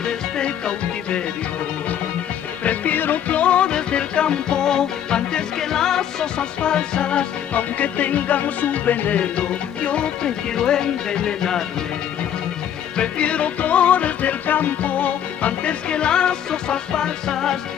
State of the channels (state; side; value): quieter; right; 9.7 dB